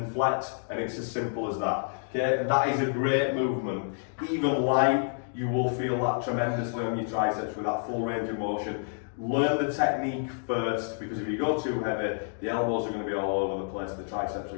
flex, and it's as simple as that. Okay, and that is a great movement. Even light, you will feel that tremendously on your triceps with that full range of motion. Learn the technique first, because if you go too heavy, the elbows are going to be all over the place, the triceps are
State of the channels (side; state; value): right; silent; digital silence